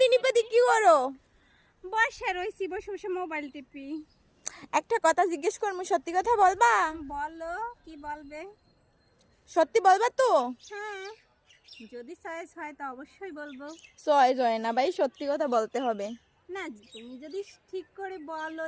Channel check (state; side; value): identical; both; correlation 1.00